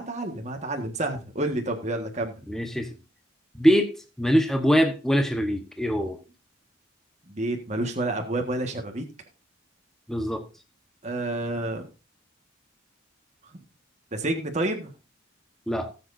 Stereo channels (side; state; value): both; normal; correlation 0.76